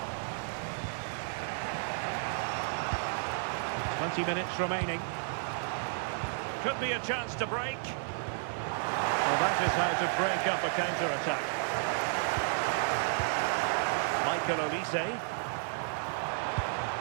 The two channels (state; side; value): silent; left; 56 dB below the other